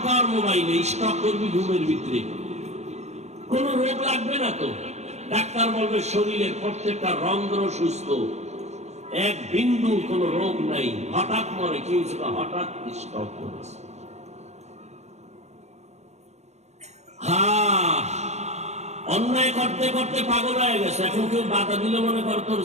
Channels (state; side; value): late; left; 0.32 ms